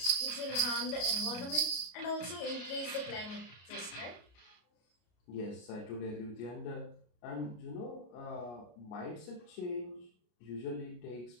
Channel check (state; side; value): late; right; 33 ms